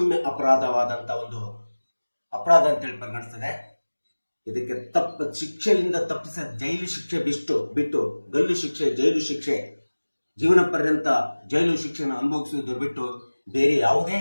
ಅಪರಾಧವಾದಂತ ಒಂದು ಅಪರಾಧ ಅಂತೇಳಿ ಪರಿಗಣಿಸ್ತದೆ. ಇದಕ್ಕೆ ಶಿಕ್ಷೆಯಿಂದ ತಪ್ಪಿಸ ಜೈಲು ಶಿಕ್ಷೆ ಬಿಟ್ಟು ಗಲ್ಲು ಶಿಕ್ಷೆ, ಜೈಲು ಶಿಕ್ಷೆ, ಜೀವನ ಪರ್ಯಂತ ಜೈಲು ಶಿಕ್ಷೆಯನ್ನು ಅನುಭವಿಸುವುದರ ಬಿಟ್ಟು ಬೇರೆ ಯಾವುದೇ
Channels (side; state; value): both; inverted; correlation -1.00